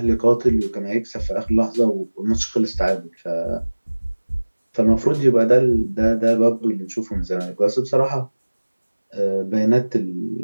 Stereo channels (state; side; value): inverted; both; correlation -1.00